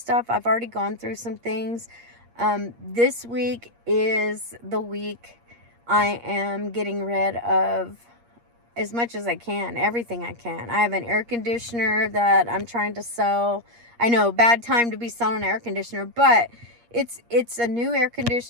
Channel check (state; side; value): late; left; 8.5 ms